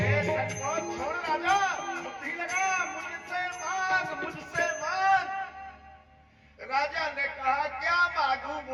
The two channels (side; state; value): both; identical; correlation 1.00